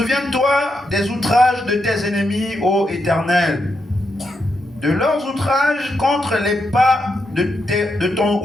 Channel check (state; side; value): normal; both; correlation 0.83